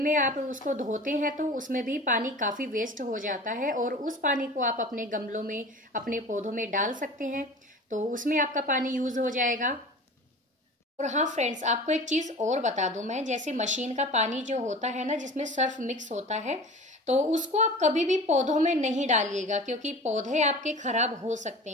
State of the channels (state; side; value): normal; both; correlation 0.38